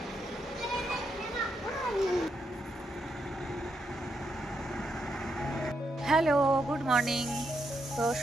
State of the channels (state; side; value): normal; both; correlation 0.81